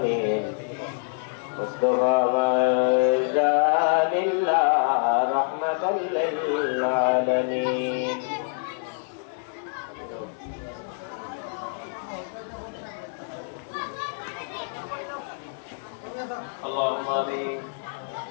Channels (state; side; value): silent; right; digital silence